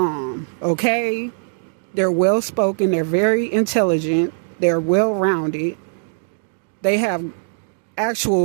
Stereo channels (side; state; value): left; silent; 65 dB below the other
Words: okay? They're well-spoken, they're very intelligent, they're well-rounded, they have